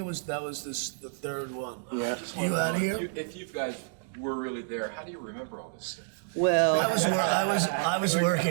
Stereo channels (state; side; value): silent; left; digital silence